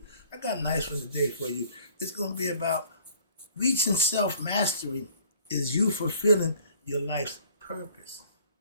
I got a nice one today for you. It's going to be about reaching self-mastery is you fulfilling your life's purpose.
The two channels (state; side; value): inverted; both; correlation -0.55